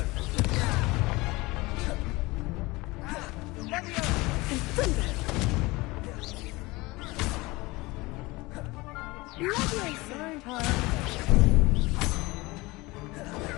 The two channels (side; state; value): right; quieter; 22.3 dB